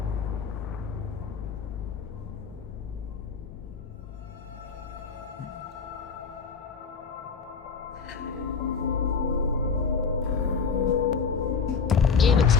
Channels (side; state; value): right; quieter; 5.6 dB